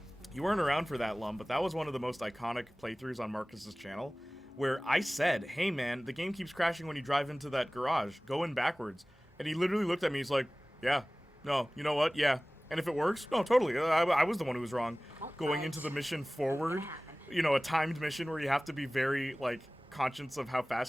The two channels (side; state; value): both; normal; correlation 0.98